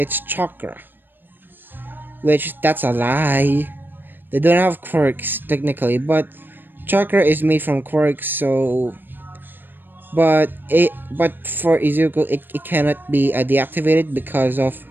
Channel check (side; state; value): left; late; 0.094 ms